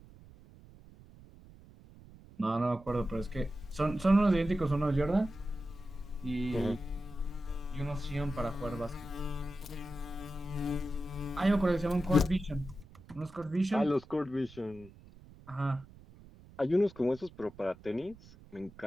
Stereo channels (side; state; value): right; noise; rumble, 21 dB below the sound